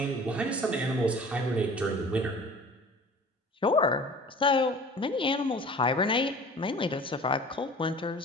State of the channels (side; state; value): both; normal; correlation 0.44